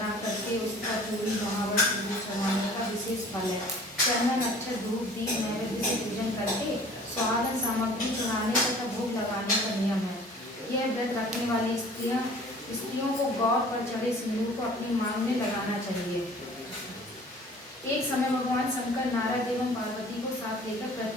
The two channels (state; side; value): normal; both; correlation 0.49